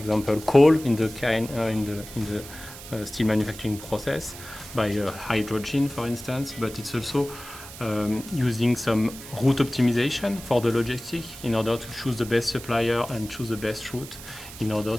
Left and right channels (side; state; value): right; noise; hiss, 14 dB below the sound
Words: coal in the steel manufacturing process by hydrogen, for instance, but it's also using some route optimization for the logistic in order to choose the best supplier and choose the best route in order